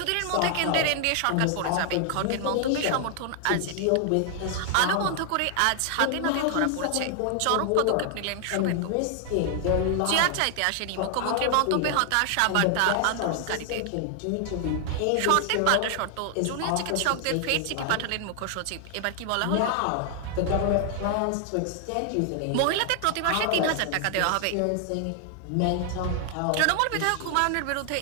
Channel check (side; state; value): both; different; correlation 0.00